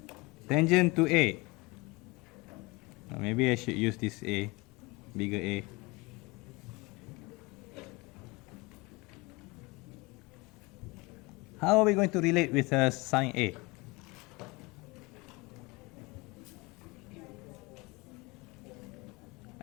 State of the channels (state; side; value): quieter; right; 24.9 dB